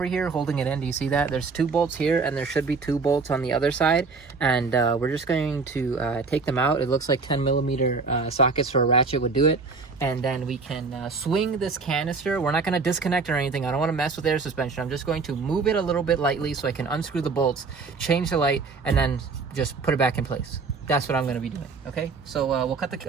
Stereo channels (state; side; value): quieter; left; 4.5 dB